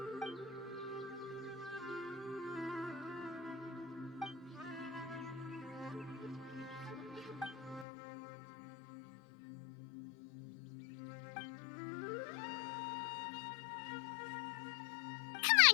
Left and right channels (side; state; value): right; drops out; at 7.9 s